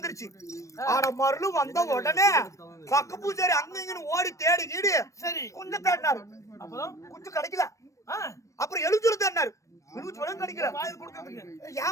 ஆனா மருள் வந்த உடனே பக்க பூஜாரி அங்க இங்கன்னு ஓடி தேடி கீடு சரி கொஞ்சம் தேடினாரு. அப்புறம் கொஞ்சம் கிடைக்கல. அப்புறம் எழுச்சூர் தேடினாரு.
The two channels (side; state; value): right; late; 0.15 ms